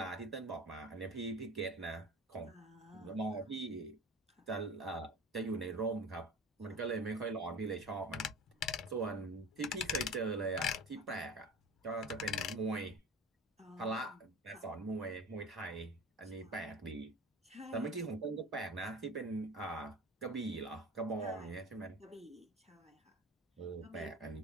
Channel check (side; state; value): both; normal; correlation 0.36